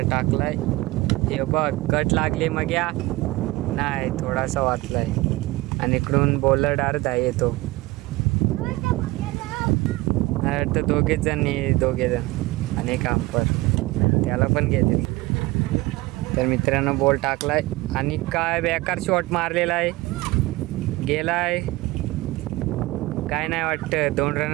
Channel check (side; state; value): left; quieter; 20.2 dB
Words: टाकलाय. हे बघ, कट लागली मग या नाही, थोडासा वाचलाय आणि इकडून बॉलर डायरेक्ट आहे येतो. तर दोघे जण आणि एक अंपर त्याला पण घेते. तर मित्रांनो, बॉल टाकलाय आणि काय बेकार शॉट मारलेला आहे, गेलाय. काय नाही वाटतं, 2